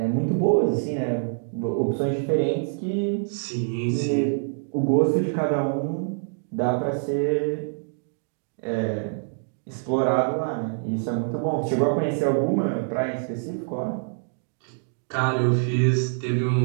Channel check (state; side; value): silent; left; digital silence